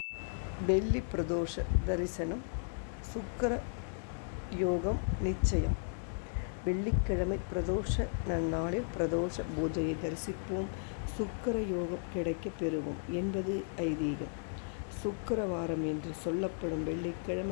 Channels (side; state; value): right; silent; digital silence